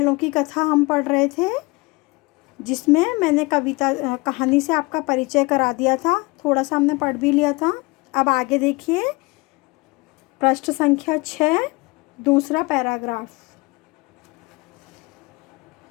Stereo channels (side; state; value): right; quieter; 24.8 dB